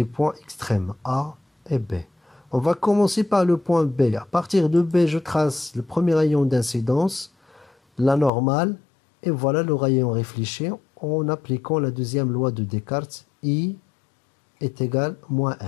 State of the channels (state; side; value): drops out; right; at 8.3 s